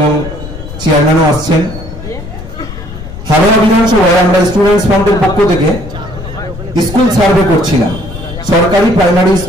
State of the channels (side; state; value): left; noise; rumble, 12 dB below the sound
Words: চেয়ারম্যানও আসছেন। হাওড়া বিধানসভায় আমরা স্টুডেন্টস ফ্রন্টের পক্ষ থেকে স্কুল সার্ভে করছিলাম। সরকারি প্রাইমারি